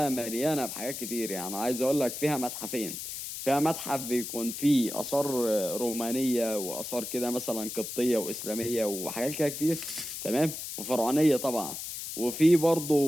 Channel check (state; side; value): noise; left; hiss, 7 dB below the sound